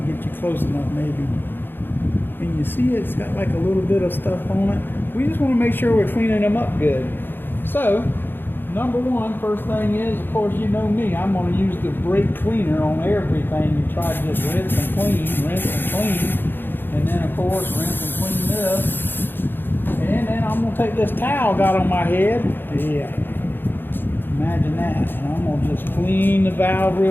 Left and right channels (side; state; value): right; late; 0.098 ms